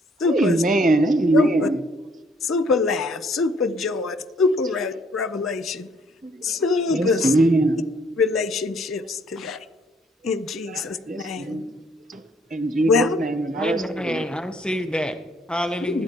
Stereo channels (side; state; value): both; normal; correlation 0.64